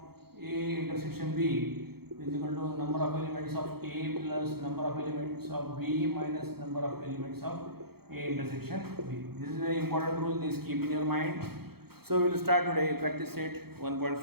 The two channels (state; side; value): late; left; 0.96 ms